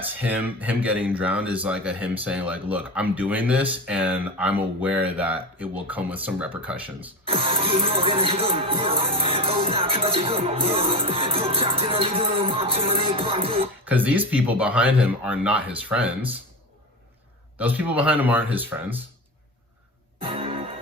him getting drowned is like him saying like, look, I'm doing this and I'm aware that it will come with some repercussions. Because these people behind him are not his friends. Those people behind him aren't his friends.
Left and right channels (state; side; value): normal; both; correlation 0.24